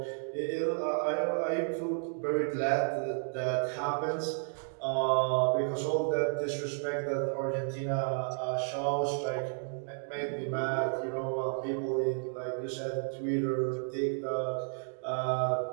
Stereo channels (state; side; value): silent; left; digital silence